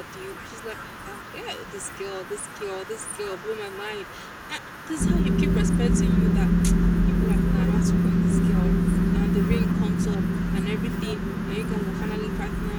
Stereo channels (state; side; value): identical; both; correlation 1.00